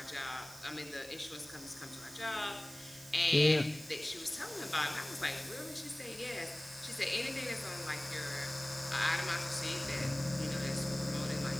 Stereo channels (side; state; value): right; noise; hiss, 17 dB below the sound